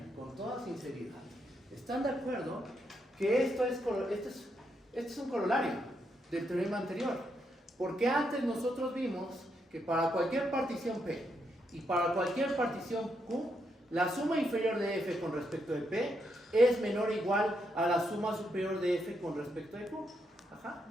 con toda sinceridad, ¿están de acuerdo que esto es un corolario del teorema anterior? Porque antes nosotros vimos que para cualquier partición P y para cualquier partición Q, la suma inferior de F con respecto de P es menor o igual a la suma superior de F con respecto de Q. Ajá.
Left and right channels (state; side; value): normal; both; correlation 0.79